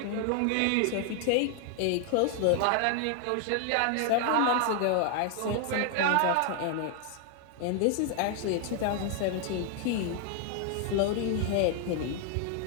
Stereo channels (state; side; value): different; both; correlation 0.00